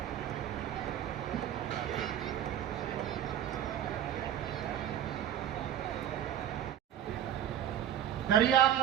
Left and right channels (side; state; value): left; quieter; 10.6 dB